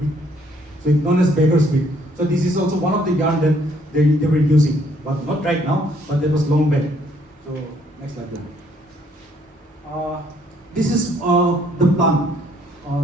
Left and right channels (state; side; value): normal; both; correlation 0.65